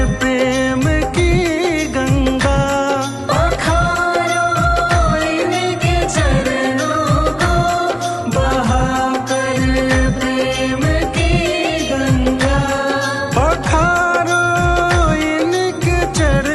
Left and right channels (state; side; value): identical; both; correlation 1.00